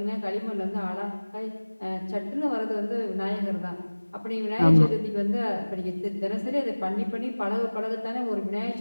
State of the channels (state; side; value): inverted; both; correlation -1.00